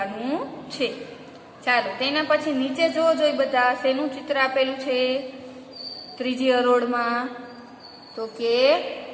છે। ચાલો તેના પછી નીચે જોઈ બધા શેનું ચિત્ર આપેલું છે? ત્રીજી હરોળમાં તો કે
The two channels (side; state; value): both; identical; correlation 1.00